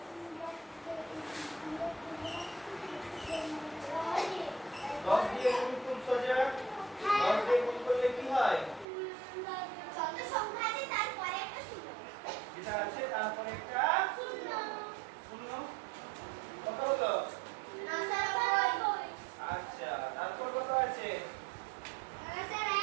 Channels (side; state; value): left; drops out; at 8.8 s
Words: 10 দিয়ে গুণ খুব সোজা। 10 দিয়ে গুণ করলে কি হয়? যেটা আছে তারপরে একটা শূন্য, কত হলো? আচ্ছা, তারপর কত আছে?